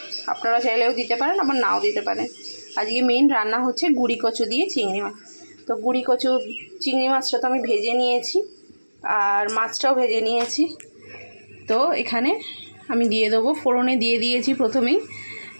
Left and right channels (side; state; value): both; inverted; correlation -1.00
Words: আপনারা চাইলেও দিতে পারেন, আবার নাও দিতে পারেন। আজকে মেইন রান্না হচ্ছে গুঁড়ি কচু দিয়ে চিংড়ি মাছ। তো গুঁড়ি কচু চিংড়ি মাছটা তো আমি ভেজে নিয়েছি, আর মাছটাও ভেজে নিয়েছি। তো এখানে আমি দিয়ে দেবো, ফোড়নে দিয়ে দিয়েছি প্রথমেই